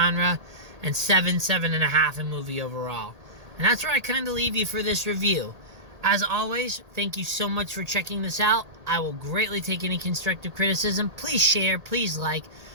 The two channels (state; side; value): late; left; 1.8 ms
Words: and 7.5 in movie overall. And that's where I kind of leave you for this review. As always, thank you so much for checking this out. I will greatly take any constructive criticism. Please share, please like,